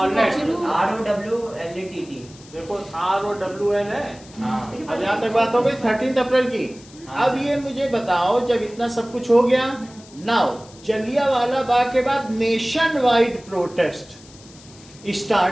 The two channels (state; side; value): noise; left; hiss, 22 dB below the sound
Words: शुरू ROWLETT देखो ROWL है। हाँ अब यहाँ तक बात हो गई 13 अप्रैल की। हाँ। अब ये मुझे बताओ, जब इतना सब कुछ हो गया, नाउ जलियांवाला बाग के बाद nation wide protest